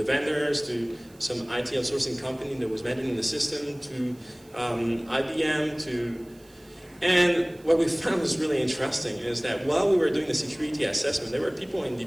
some IT outsourcing company that was managing the system, to IBM, and what we found was really interesting is that while we were doing the security assessment, there were people in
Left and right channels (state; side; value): noise; right; hiss, 28 dB below the sound